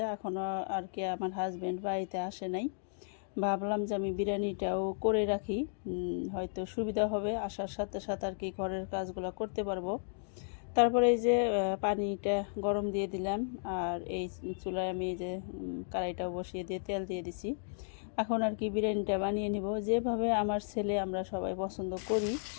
এখনও আর কি আমার হাজব্যান্ড বাড়িতে আসে নাই। ভাবলাম যে আমি বিরিয়ানিটাও করে রাখি, হয়তো সুবিধা হবে, আসার সাথে সাথে আর কি ঘরের কাজগুলো করতে পারবো। তারপরে এই যে পানিটা গরম দিয়ে দিলাম, আর এই চুলায় আমি এই যে কড়াইটাও বসিয়ে দিয়ে তেল দিয়ে দিছি। এখন আর কি বিরিয়ানিটা বানিয়ে নিব, যেভাবে আমার ছেলে আমরা সবাই পছন্দ করি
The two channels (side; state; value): right; silent; digital silence